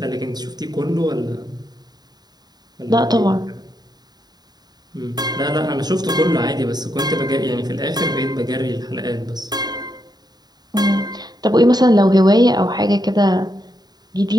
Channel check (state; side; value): late; left; 0.20 ms